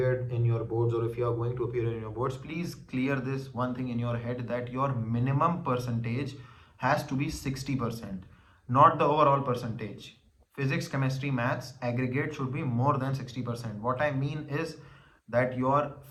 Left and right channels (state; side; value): identical; both; correlation 1.00